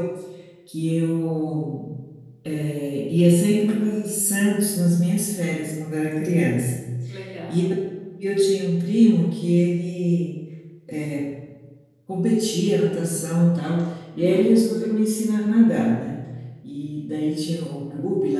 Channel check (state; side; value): identical; both; correlation 1.00